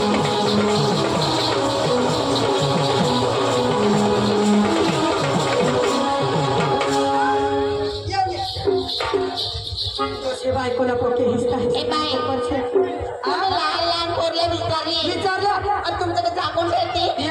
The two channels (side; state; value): both; identical; correlation 1.00